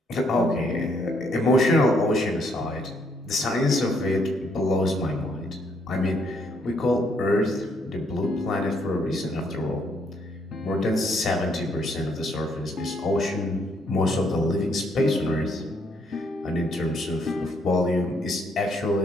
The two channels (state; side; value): normal; both; correlation 0.71